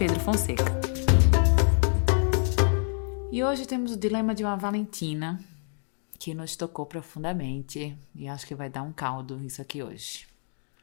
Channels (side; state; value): right; silent; 60 dB below the other